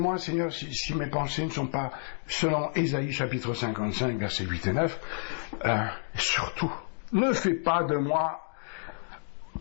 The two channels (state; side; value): silent; right; digital silence